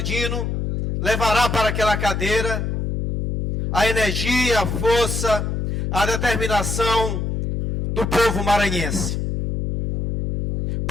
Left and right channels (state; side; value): noise; left; hum, 2 dB below the sound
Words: Dino levará para aquela cadeira a energia, a força, a determinação do povo maranhense.